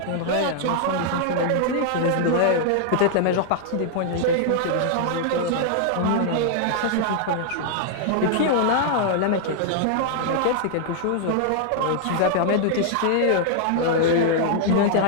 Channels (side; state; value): both; different; correlation -0.01